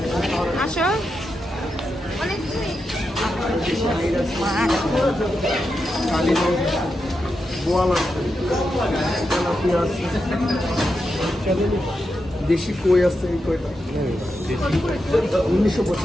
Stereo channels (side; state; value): both; normal; correlation 0.87